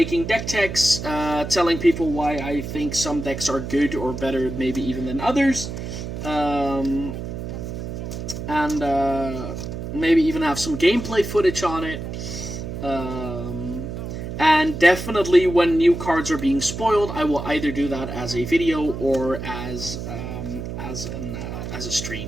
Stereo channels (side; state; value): right; noise; hum, 7 dB below the sound